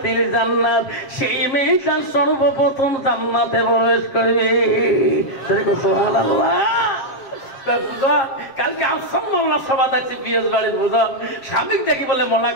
জান্নাত, সেই মেয়েটা সর্বপ্রথম জান্নাতে প্রবেশ করবে। সুবহানাল্লাহ। কালকে আফসার মোল্লা সভা আছে পিএস বাড়ির বুঝল। স্বামী দেখি বলে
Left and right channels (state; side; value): late; right; 7.6 ms